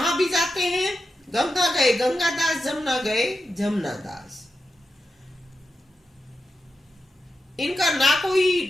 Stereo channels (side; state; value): both; normal; correlation 0.89